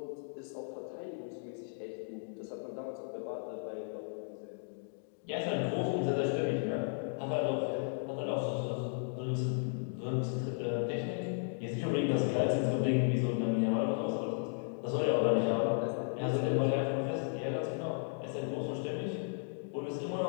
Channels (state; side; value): silent; right; digital silence